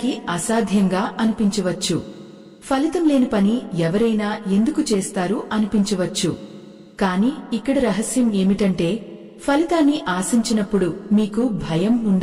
అసాధ్యంగా అనిపించవచ్చు. ఫలితం లేని పని ఎవరైనా ఎందుకు చేస్తారు అనిపించవచ్చు. కాని ఇక్కడ రహస్యం ఏమిటంటే, ఫలితాన్ని ఆశించినప్పుడు మీకు భయం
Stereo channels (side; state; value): both; identical; correlation 1.00